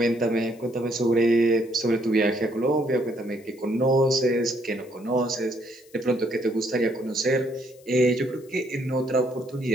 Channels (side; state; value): left; noise; hiss, 28 dB below the sound